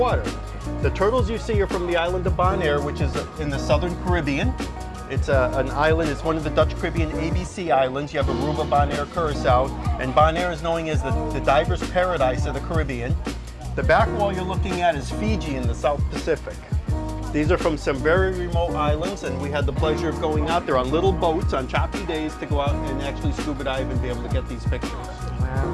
The turtles you see are from the island of Bonaire, which is in the southern Caribbean. It's an island, it's one of the Dutch Caribbean ABC islands. You have Aruba, Bonaire, Curacao, and Bonaire is known as the diver's paradise of the Caribbean. The back wall you're looking at is Fiji in the South Pacific. These are from some very remote islands, and we had the pleasure of going out there on little boats on choppy days to go out and actually scuba dive and be able to get these pictures.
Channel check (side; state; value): both; identical; correlation 1.00